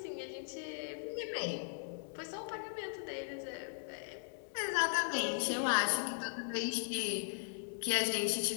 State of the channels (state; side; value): silent; right; digital silence